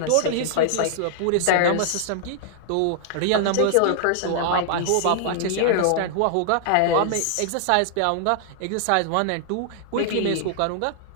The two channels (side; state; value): both; different; correlation -0.01